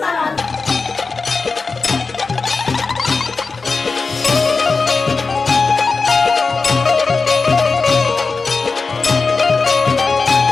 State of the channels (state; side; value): quieter; right; 4.3 dB